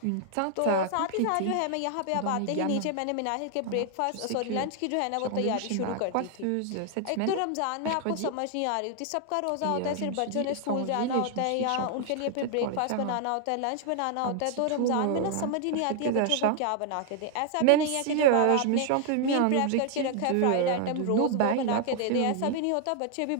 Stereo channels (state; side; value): different; both; correlation 0.00